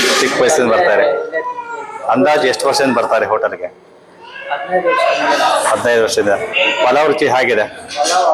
ಚಿಕ್ಕ ವಯಸ್ಸಿಂದ ಬರ್ತಾರೆ. ಅಂದಾಜು ಎಷ್ಟು ವರ್ಷದಿಂದ ಬರ್ತಾರೆ ಹೋಟೆಲ್ಗೆ? 15 ವರ್ಷದಿಂದ. ಪಲಾವ್ ರುಚಿ ಹೇಗಿದೆ?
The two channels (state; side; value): identical; both; correlation 1.00